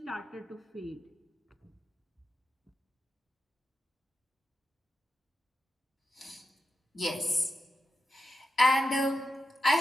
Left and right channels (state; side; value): normal; both; correlation 0.89